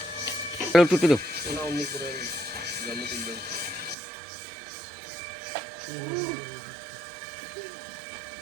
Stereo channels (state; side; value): drops out; left; at 4.0 s